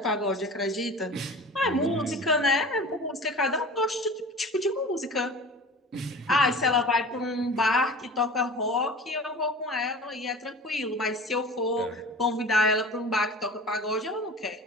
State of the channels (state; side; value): normal; both; correlation 0.38